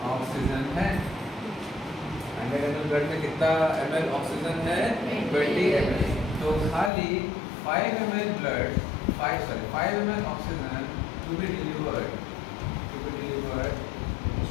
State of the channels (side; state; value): right; drops out; at 6.9 s